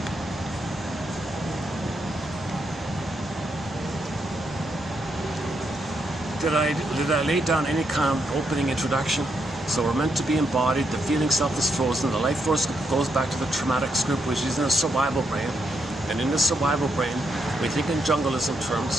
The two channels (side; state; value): both; normal; correlation 0.79